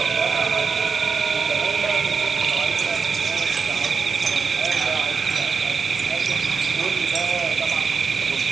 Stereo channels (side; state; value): left; quieter; 5.2 dB